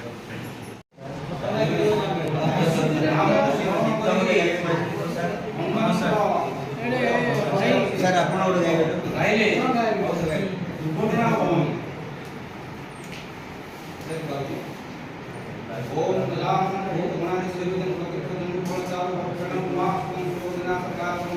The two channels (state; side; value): identical; both; correlation 1.00